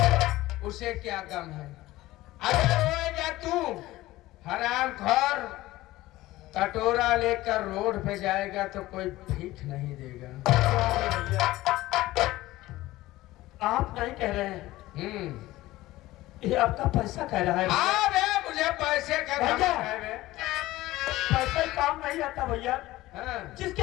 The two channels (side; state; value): right; quieter; 17.3 dB